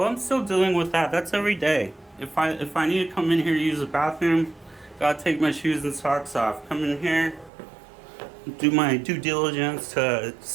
I'm still dealing with that. That's every day. If I need to come in here to use the bathroom, gotta take my shoes and socks off. Come in here, do my due diligence to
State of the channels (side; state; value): left; drops out; at 7.5 s